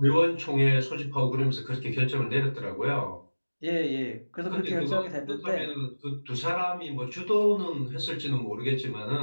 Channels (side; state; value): both; inverted; correlation -1.00